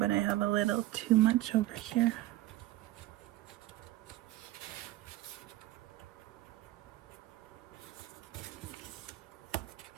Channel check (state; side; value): quieter; left; 15.9 dB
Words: I have a little too much over here.